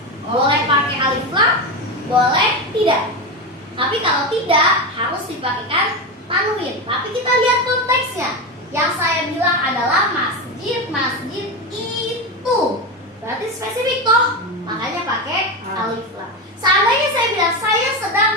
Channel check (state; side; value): normal; both; correlation 0.17